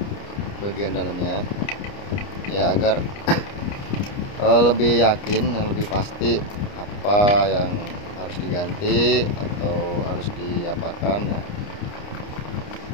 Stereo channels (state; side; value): late; right; 29 ms